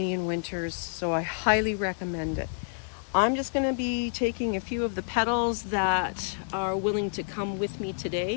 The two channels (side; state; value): right; silent; digital silence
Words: winters, so I highly recommend it. I'm just going to be taking a few of the petals that are willing to come with me